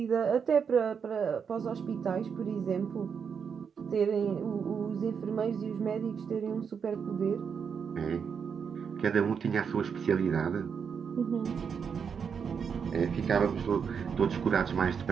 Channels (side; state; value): left; quieter; 6.6 dB